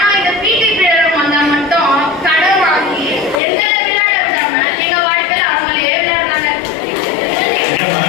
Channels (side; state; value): right; drops out; at 3.4 s